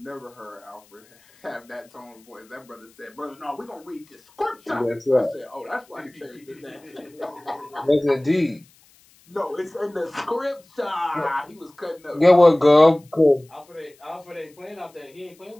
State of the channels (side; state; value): left; noise; hiss, 30 dB below the sound